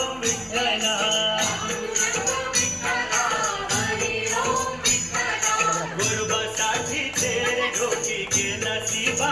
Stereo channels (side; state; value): both; identical; correlation 1.00